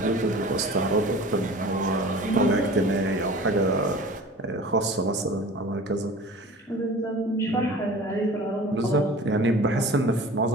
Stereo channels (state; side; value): normal; both; correlation 0.40